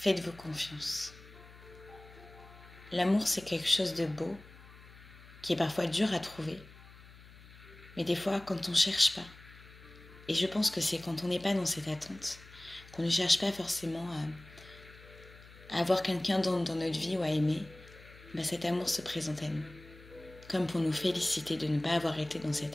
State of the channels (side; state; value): left; noise; hum, 20 dB below the sound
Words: confiance. L'amour, c'est quelque chose de beau, qui est parfois dur à trouver, mais des fois, quand on ne cherche pas. Et je pense que c'est quand on n'est pas dans cette attente, qu'on ne cherche pas forcément à avoir quelqu'un dans notre vie ou à aimer, ben cet amour se présente à nous. Comme pour nous féliciter de ne pas avoir été dans